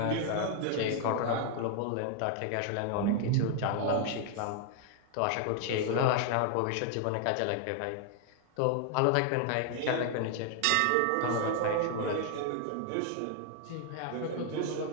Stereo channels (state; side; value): different; both; correlation 0.00